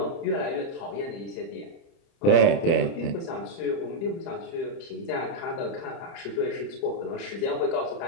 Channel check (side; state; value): right; late; 30 ms